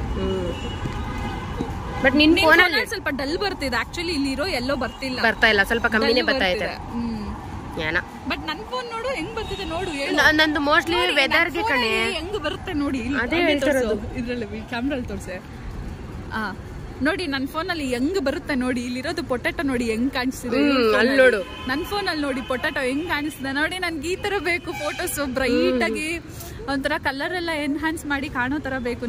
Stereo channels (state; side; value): identical; both; correlation 1.00